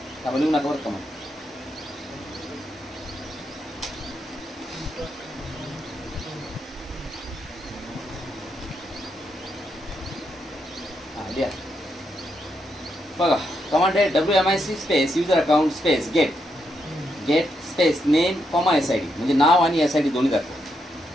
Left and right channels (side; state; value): both; normal; correlation 0.81